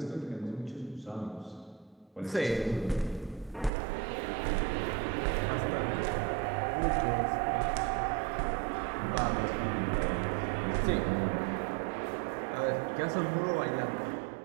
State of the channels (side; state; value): left; drops out; at 3.7 s